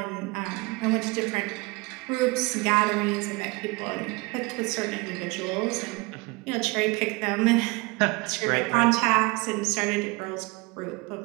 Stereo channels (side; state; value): left; quieter; 25.8 dB